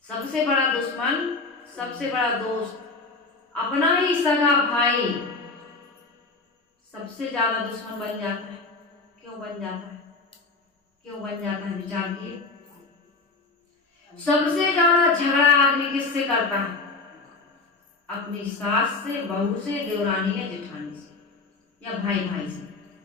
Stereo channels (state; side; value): quieter; right; 3.7 dB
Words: सबसे बड़ा दुश्मन, सबसे बड़ा दोस्त, अपना ही सगा भाई सबसे ज्यादा दुश्मन बन जाता है। क्यों बन जाता है, क्यों बन जाता है, विचार किए। सबसे ज्यादा झगड़ा आदमी किससे करता है, अपनी सास से, बहू से, देवरानी या जेठानी से, या भाई भाई से।